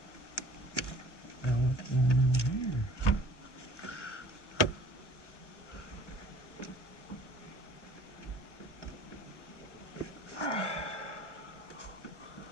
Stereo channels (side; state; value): right; late; 1.0 ms